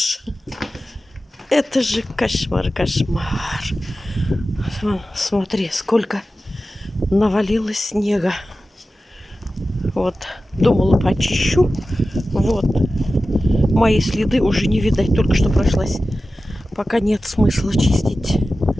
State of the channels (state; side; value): normal; both; correlation 0.94